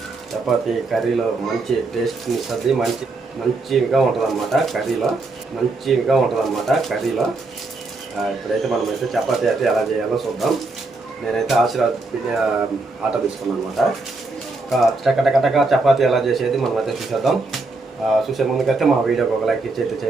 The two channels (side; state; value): left; quieter; 3.4 dB